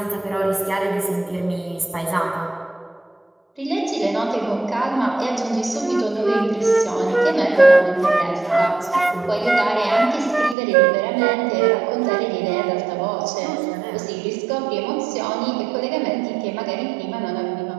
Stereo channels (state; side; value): drops out; left; at 10.6 s